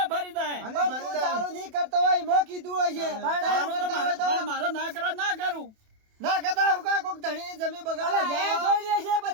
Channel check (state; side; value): late; left; 28 ms